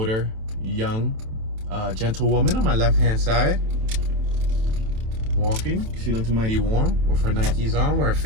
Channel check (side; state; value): left; late; 27 ms